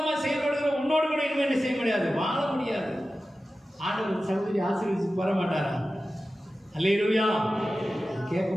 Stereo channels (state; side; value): normal; both; correlation 0.94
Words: செயல்படுகிற உன்னோடு கூட இன்னும் என்ன செய்ய முடியாது, வாழ முடியாது. ஆண்டவர் சகோதரி ஆசீர்வதிச்சு வர மாட்டாரா? அல்லேலூயா.